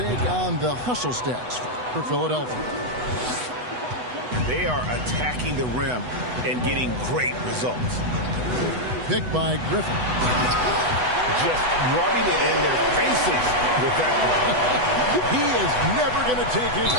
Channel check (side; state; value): left; late; 8.0 ms